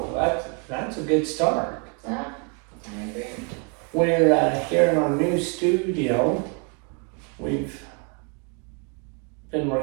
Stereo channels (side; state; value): left; quieter; 36.7 dB